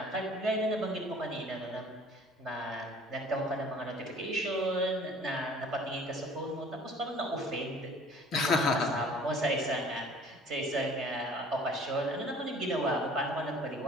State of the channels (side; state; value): both; normal; correlation 0.50